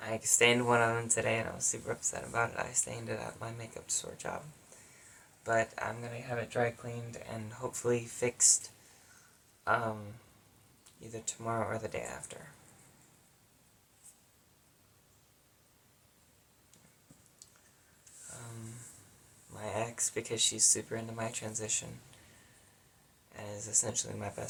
I stained one of them today and I was super upset about it. I stained it at my makeup store job. But I'm going to have it dry cleaned and hopefully fixed either tomorrow or the day after. My ex, because she's super into my transition and is essentially my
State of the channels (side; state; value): both; identical; correlation 1.00